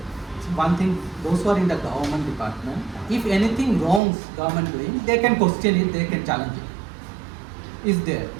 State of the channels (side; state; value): left; drops out; at 4.0 s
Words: those who are in the government department, if anything wrongs government doing, they can question it, they can challenge it. Is there,